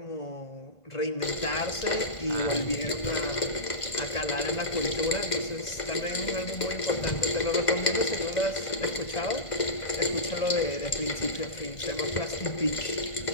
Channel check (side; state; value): right; late; 1.5 ms